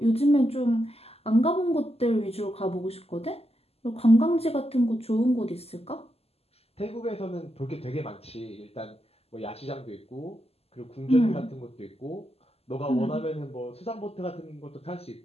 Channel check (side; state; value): right; late; 0.29 ms